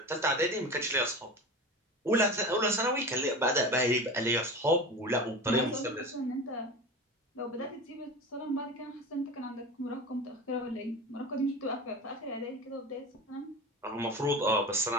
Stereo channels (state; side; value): normal; both; correlation 0.30